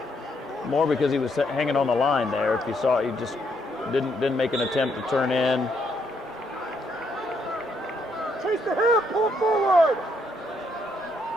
more because he was hanging on the line there. If you saw, he just didn't make an attempt to turn in. Chase the hip, pull forward.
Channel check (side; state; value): both; normal; correlation 0.74